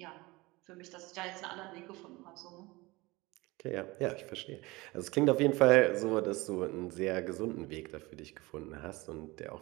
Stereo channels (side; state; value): left; quieter; 22.2 dB